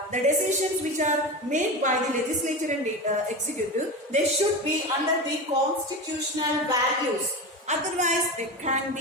The decisions which are made by the legislature and executive, they should be under the constitutional values. Otherwise, they can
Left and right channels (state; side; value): normal; both; correlation 0.24